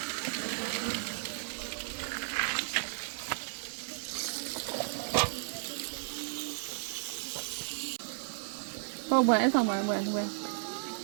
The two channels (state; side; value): silent; left; digital silence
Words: bueno, eso bueno, bueno.